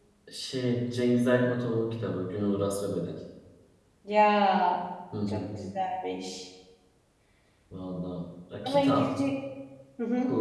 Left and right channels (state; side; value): identical; both; correlation 1.00